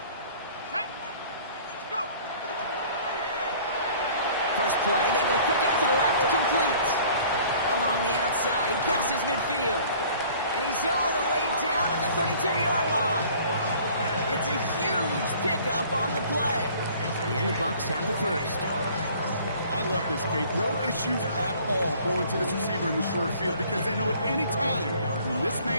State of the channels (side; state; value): both; inverted; correlation -0.52